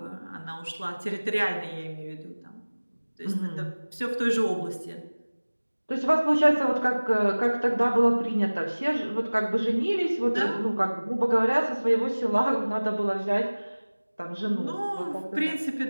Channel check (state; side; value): inverted; both; correlation -1.00